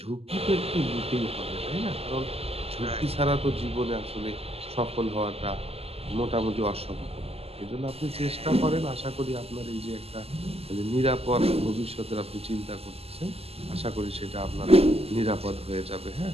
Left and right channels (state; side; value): late; left; 0.29 ms